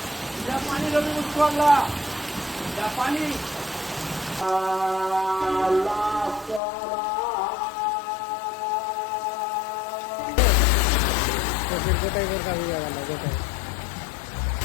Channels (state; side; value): drops out; right; at 6.6 s